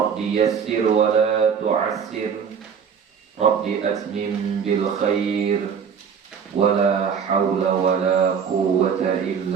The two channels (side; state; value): left; quieter; 6.9 dB